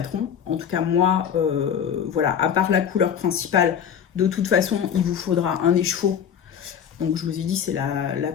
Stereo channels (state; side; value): quieter; right; 8.3 dB